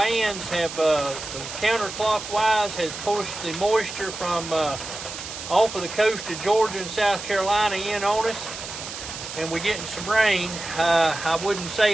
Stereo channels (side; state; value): right; noise; hiss, 9 dB below the sound